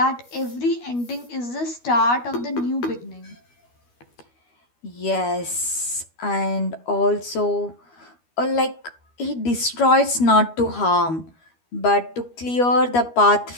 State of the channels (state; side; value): late; right; 12 ms